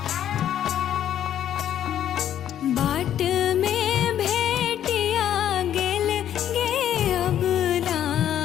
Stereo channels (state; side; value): quieter; right; 10.6 dB